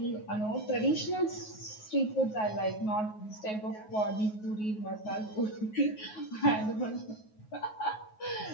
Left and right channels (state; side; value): late; right; 9.4 ms